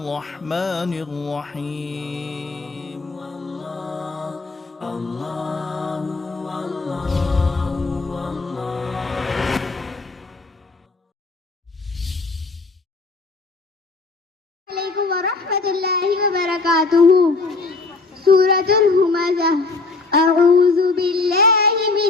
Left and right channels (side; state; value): right; quieter; 3.8 dB